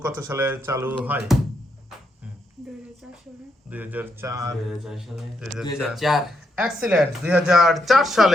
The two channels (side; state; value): both; normal; correlation 0.79